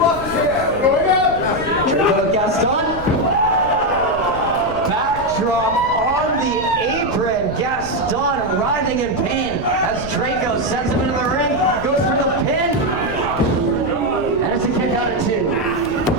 Drayco with Gaston. Backdrop on the apron. Gaston writhing in pain as Drayco sends him into the ring. Goes for the pin. And it's a kick out of two.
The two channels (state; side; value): noise; left; rumble, 12 dB below the sound